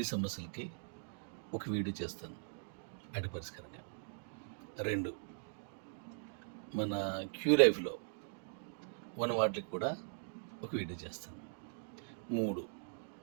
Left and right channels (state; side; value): silent; left; digital silence